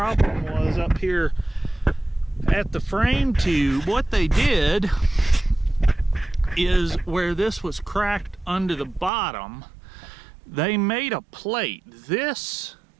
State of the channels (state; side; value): drops out; left; at 9.1 s